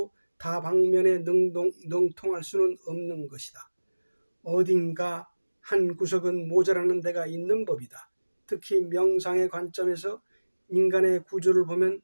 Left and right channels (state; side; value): inverted; both; correlation -1.00